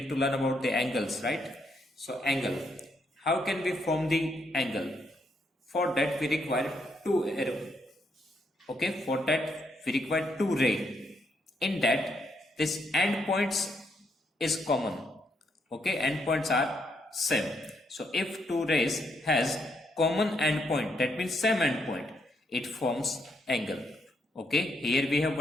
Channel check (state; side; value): normal; both; correlation 0.76